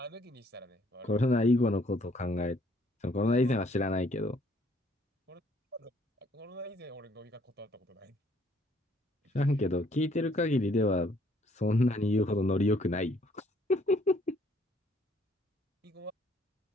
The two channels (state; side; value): normal; both; correlation 0.64